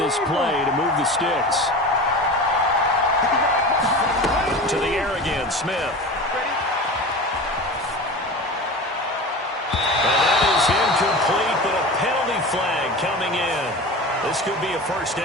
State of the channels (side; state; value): both; normal; correlation 0.32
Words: play to move the sticks. To the air again, Smith. And that is incomplete, but a penalty flag coming in. This could be a 1st